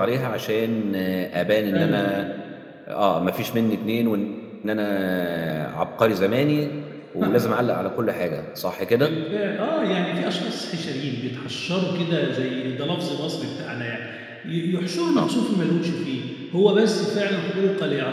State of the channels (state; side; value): identical; both; correlation 1.00